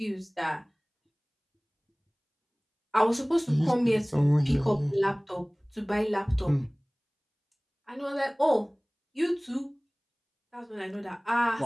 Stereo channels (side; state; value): both; identical; correlation 1.00